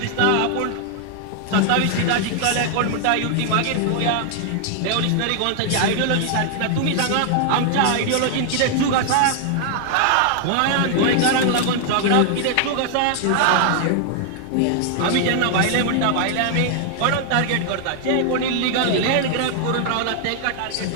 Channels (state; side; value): different; both; correlation 0.00